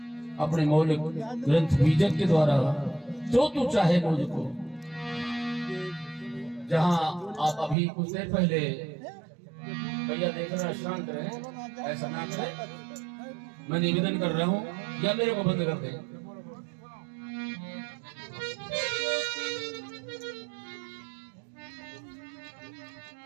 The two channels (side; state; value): left; drops out; at 7.8 s